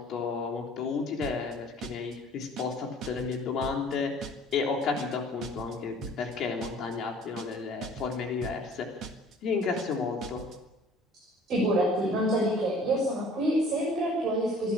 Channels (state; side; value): normal; both; correlation 0.51